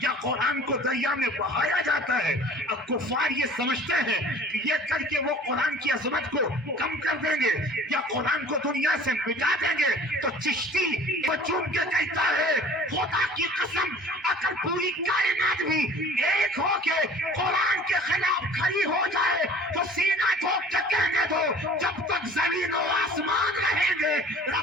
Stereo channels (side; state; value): both; normal; correlation 0.47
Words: یا قرآن کو دریا میں بہایا جاتا ہے، اور کفار یہ سمجھتے ہیں کہ یہ کر کے وہ قرآن کی عظمت کو کم کر دیں گے یا قرآن کو دنیا سے مٹا دیں گے، تو چشتی وہ چوم کے کہتا ہے خدا کی قسم اگر پوری کائنات بھی ایک ہو کے قرآن کے خلاف کھڑی ہو جائے تو سینہ ٹھوک کے کہنے دو جب تک زمین و آسمان رہیں گے